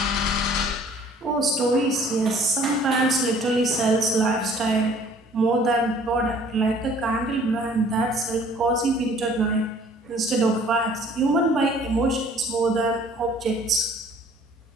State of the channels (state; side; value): normal; both; correlation 0.54